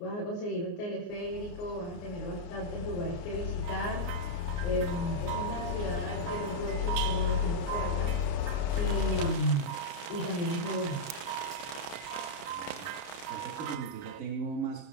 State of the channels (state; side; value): late; right; 29 ms